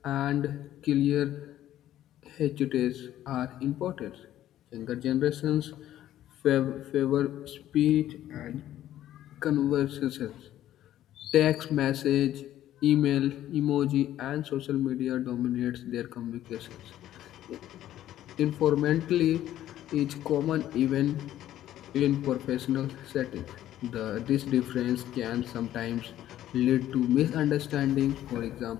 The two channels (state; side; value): quieter; right; 12.7 dB